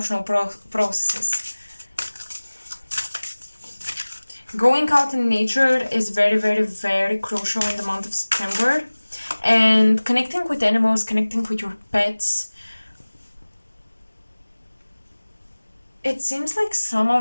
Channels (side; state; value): both; inverted; correlation -1.00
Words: processes. Going out in nature is very, very, very crucial in the month of September. And connecting with animals, connecting with your pets, It seems like some